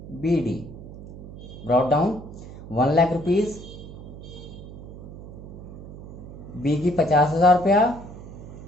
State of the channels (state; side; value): noise; right; hum, 14 dB below the sound